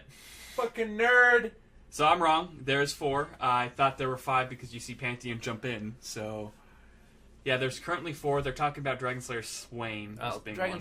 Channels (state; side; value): identical; both; correlation 1.00